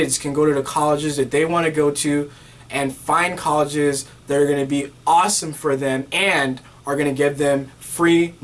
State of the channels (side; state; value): both; identical; correlation 1.00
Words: can go to the colleges that they want to go to and find colleges that are going to be awesome for them and are going to give them free